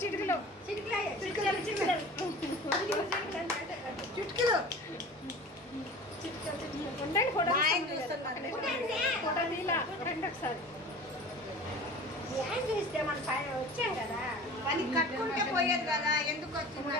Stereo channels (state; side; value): normal; both; correlation 0.39